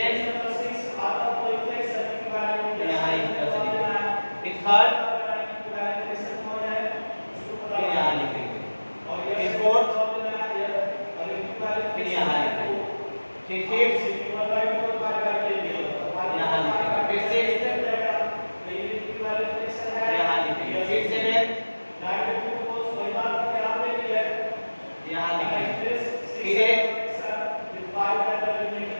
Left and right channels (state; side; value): inverted; both; correlation -1.00